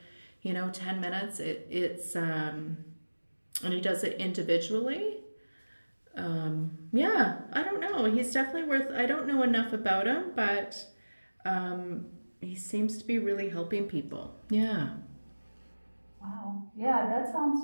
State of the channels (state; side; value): inverted; both; correlation -1.00